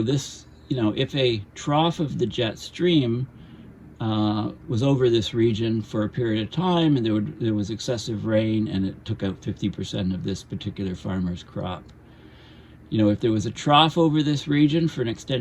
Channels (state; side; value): identical; both; correlation 1.00